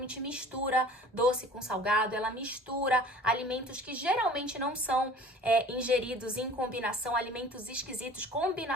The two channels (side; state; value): both; normal; correlation 0.46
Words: mistura doce com salgado, ela mistura alimentos que geralmente não são ingeridos em combinação, alimentos esquisitos,